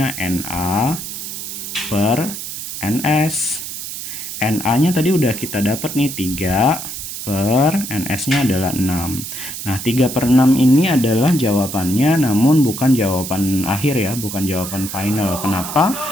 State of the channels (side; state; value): right; noise; hiss, 8 dB below the sound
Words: NA per NS. NA-nya tadi udah kita dapat nih, 3 per NS-nya adalah 6. Nah, 3 per 6 ini adalah jawabannya, namun bukan jawaban akhir ya, bukan jawaban final. Kenapa?